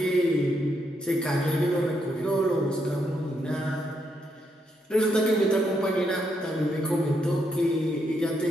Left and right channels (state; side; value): normal; both; correlation 0.78